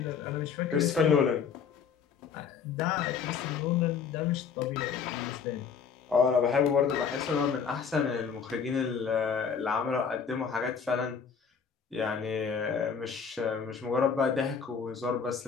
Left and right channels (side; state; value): right; quieter; 6.5 dB